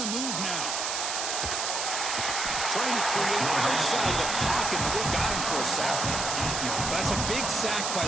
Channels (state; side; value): noise; right; hiss, 1 dB below the sound